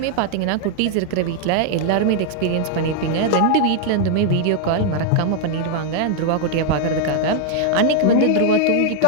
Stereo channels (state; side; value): different; both; correlation -0.01